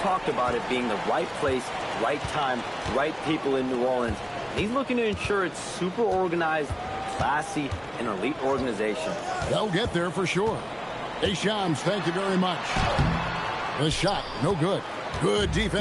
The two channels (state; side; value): identical; both; correlation 1.00